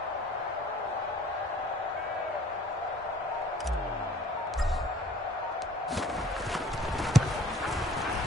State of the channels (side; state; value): both; normal; correlation 0.53